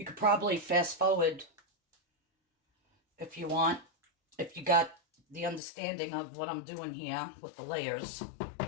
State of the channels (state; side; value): drops out; right; at 5.6 s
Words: You could probably fast forward if you want, if you got the understanding of what I'm doing here with the layers.